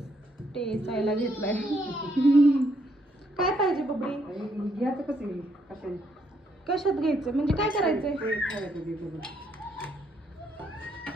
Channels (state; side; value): normal; both; correlation 0.73